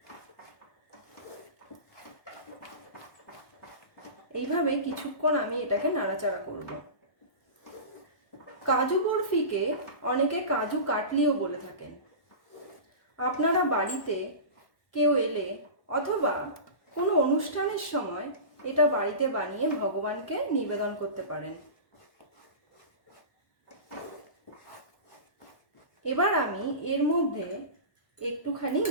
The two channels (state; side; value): late; right; 1.2 ms